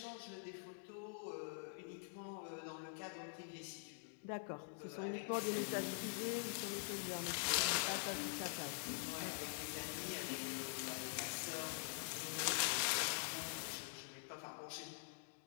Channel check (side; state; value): right; silent; digital silence